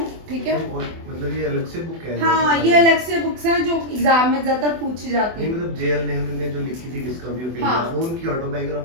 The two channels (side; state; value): left; late; 24 ms